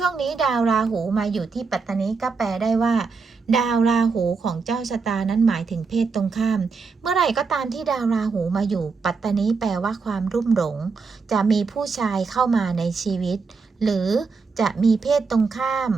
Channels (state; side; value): quieter; left; 4.8 dB